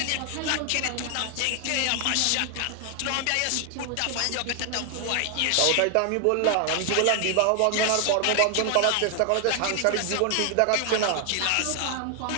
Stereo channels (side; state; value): both; different; correlation 0.00